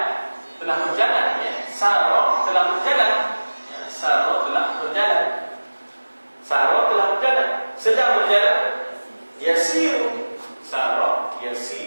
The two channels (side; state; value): both; inverted; correlation -1.00